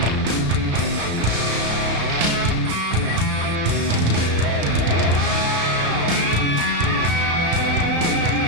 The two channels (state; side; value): late; left; 34 ms